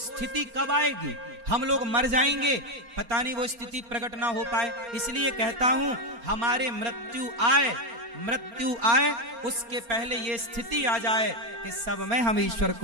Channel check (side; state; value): left; late; 4.3 ms